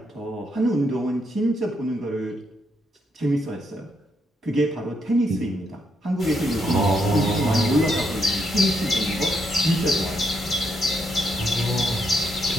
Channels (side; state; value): both; normal; correlation 0.77